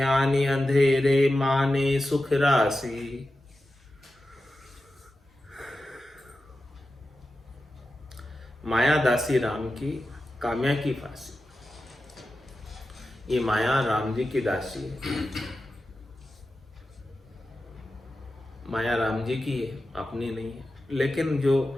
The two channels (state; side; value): normal; both; correlation 0.92